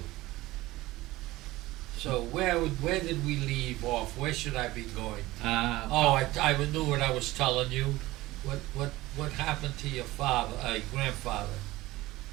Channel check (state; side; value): quieter; left; 18.4 dB